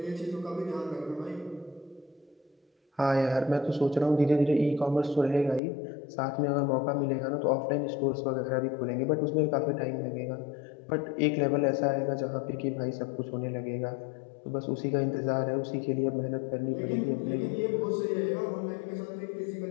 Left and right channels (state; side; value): drops out; right; at 5.6 s